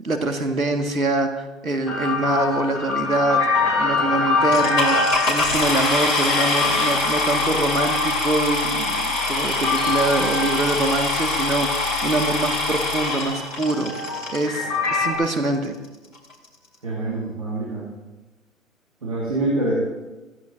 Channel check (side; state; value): both; normal; correlation 0.42